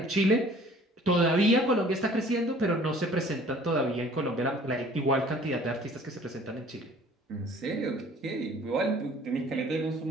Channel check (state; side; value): normal; both; correlation 0.52